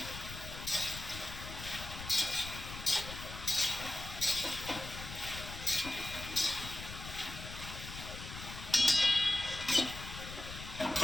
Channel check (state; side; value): noise; left; rumble, 10 dB below the sound